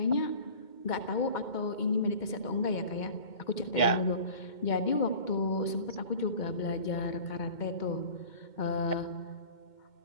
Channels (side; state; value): right; late; 2.2 ms